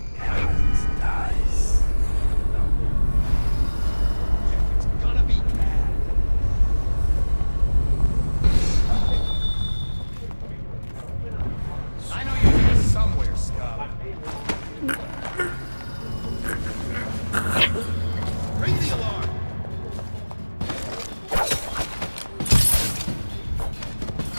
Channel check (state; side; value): inverted; both; correlation -1.00